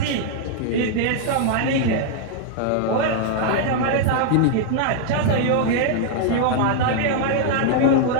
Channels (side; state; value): both; different; correlation 0.00